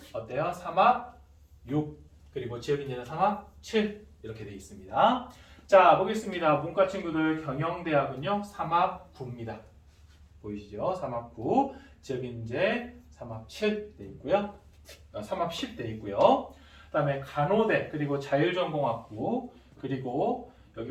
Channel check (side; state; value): both; identical; correlation 1.00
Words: 어때요? 3합 6 그리고 지역인재는 3합 7 이렇게 되어 있습니다. 자, 보겠습니다. 문과 친구들 경영대학은요 3합 9입니다. 보이시죠? 3합 9 지역인재 3합 7 돼 있고요. 3합 10 돼 있고요. 그 다음에 간호대 그리고 자율전공학부 그리고